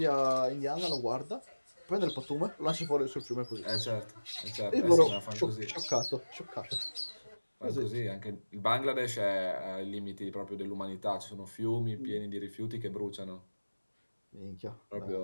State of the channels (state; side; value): inverted; both; correlation -1.00